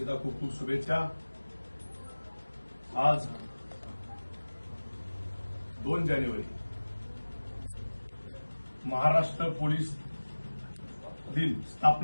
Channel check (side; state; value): both; inverted; correlation -1.00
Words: खूप खूप शुभेच्छा। आज 2 जानेवारी महाराष्ट्र पोलीस दिन,